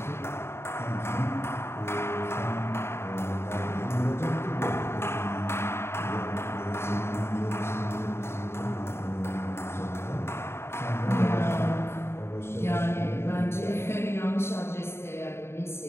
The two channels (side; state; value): right; late; 0.12 ms